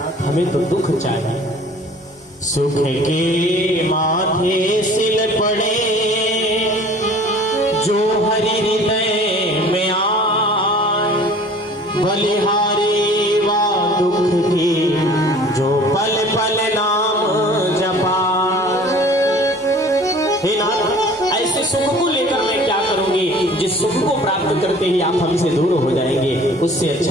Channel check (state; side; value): normal; both; correlation 0.48